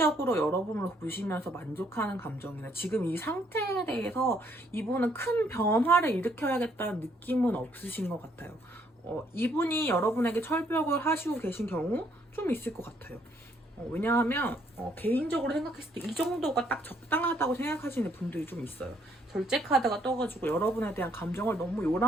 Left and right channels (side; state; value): both; normal; correlation 0.69